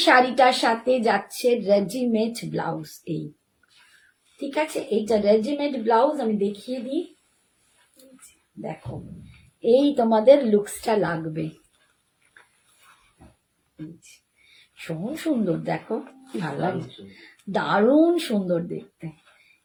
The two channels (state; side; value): identical; both; correlation 1.00